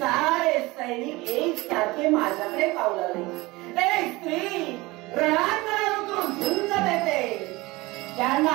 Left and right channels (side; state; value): left; quieter; 21.7 dB